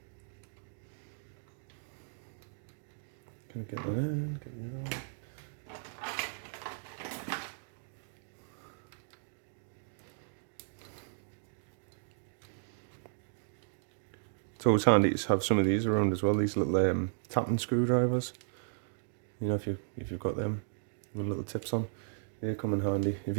Gonna get that in, get that out. It's always handy to have some of these around as well, these little tapping screwdrivers. You know, if you've got them with little tips on, they come in handy. If you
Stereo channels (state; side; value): silent; left; digital silence